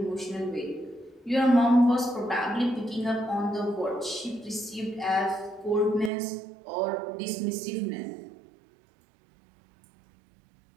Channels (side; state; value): left; drops out; at 6.1 s